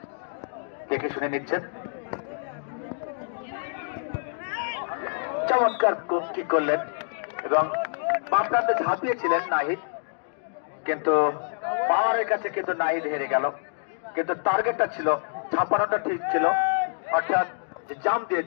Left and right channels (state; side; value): silent; right; digital silence